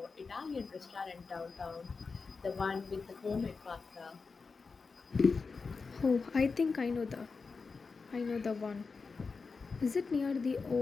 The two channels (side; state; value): right; quieter; 4.6 dB